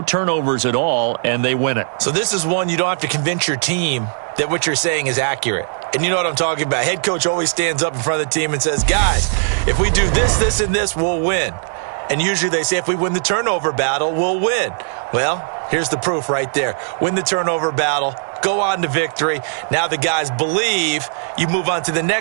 turnovers at all, and they win it. So this is one you don't have to convince your team that what you're saying is accurate. And you know what I'm talking about. Head coach always stands up in front of the team and says, guys, if we do this, this, and this, we'll win. And usually they say if we win the turnover battle, we'll win. Well, here's the proof right there. Win the turnover battle. Go on to victory. Now the guys believe. You move on to the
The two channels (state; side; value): silent; left; digital silence